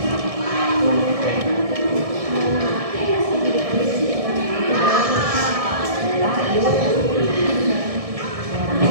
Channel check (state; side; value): late; left; 1.7 ms